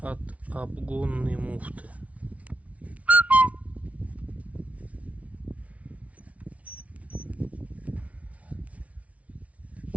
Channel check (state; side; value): late; left; 0.066 ms